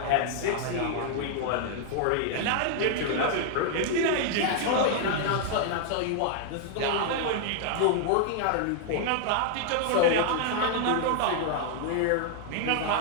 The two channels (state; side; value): different; both; correlation 0.00